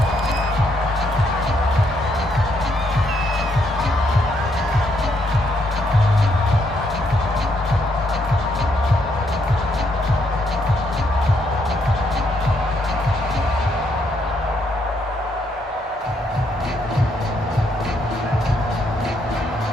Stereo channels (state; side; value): normal; both; correlation 0.74